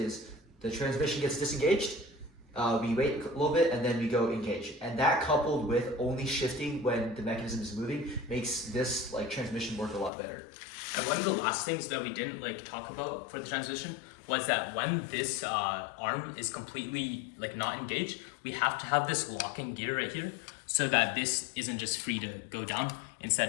the transmission gets disengaged, we wait a little bit, and then we go engage. And that coupled with only shifting when the mechanism is moving makes this like transmission work a lot better. And one of the last things that we didn't like talk about for the transmission was that when this arm is completely like not engaged, we have to have this locking gear right here so that this isn't just free to go down.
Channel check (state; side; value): drops out; right; at 10.1 s